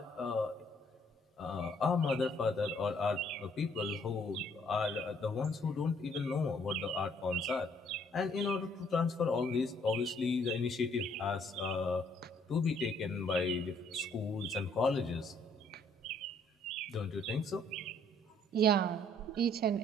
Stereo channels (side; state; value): both; normal; correlation 0.64